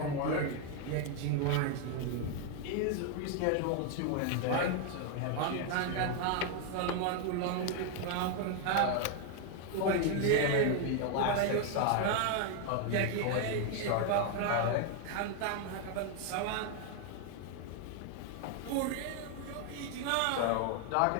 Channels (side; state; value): both; different; correlation 0.01